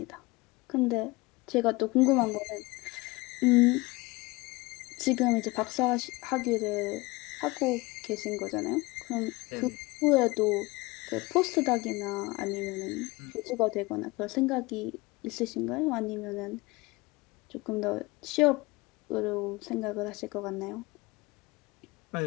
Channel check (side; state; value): right; quieter; 22.7 dB